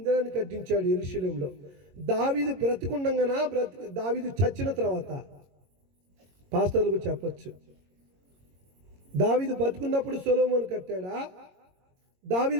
కట్టించాడు యెరూషలేములో. దావీదు బ్రతికుండగానా, దావీదు చచ్చిన తర్వాత? పాస్టర్లకు చెప్పొచ్చు. దావీదు బతుకున్నప్పుడు సొలొమోను కట్టాడా,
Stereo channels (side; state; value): left; late; 22 ms